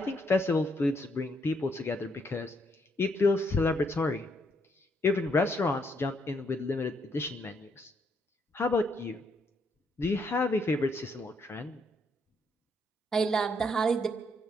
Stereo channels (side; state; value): both; normal; correlation 0.73